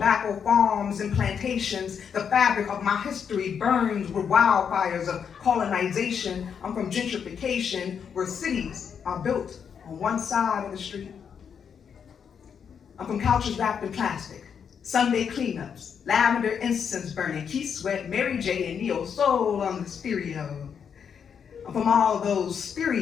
farms and plantations. The fabric of my history burns with wildfires of colonization. I'm from gentrification, where cities are built on one side of the street. I'm from couches wrapped in plastic, Sunday cleanups, lavender incense burning, Keith Sweat, Mary J. and Neo Soul on the stereo. I'm from all those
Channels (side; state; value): right; quieter; 7.2 dB